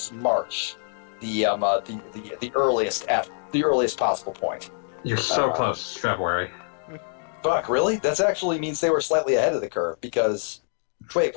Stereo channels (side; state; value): right; silent; digital silence